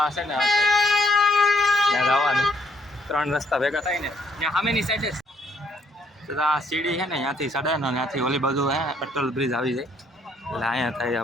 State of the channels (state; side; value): normal; both; correlation 0.68